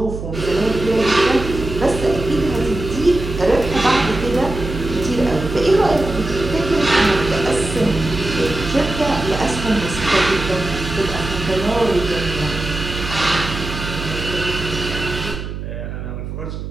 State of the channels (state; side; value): noise; right; hum, 7 dB below the sound